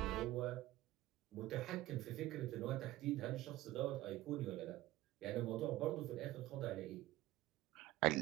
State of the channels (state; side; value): quieter; left; 16.7 dB